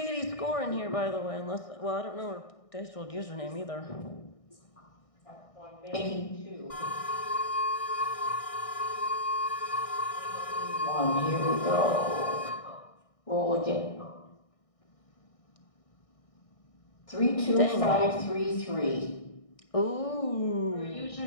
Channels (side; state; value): right; late; 1.6 ms